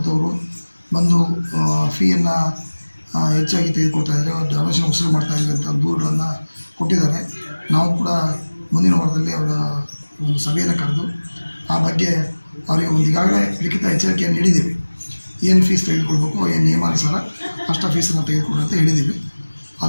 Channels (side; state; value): both; inverted; correlation -1.00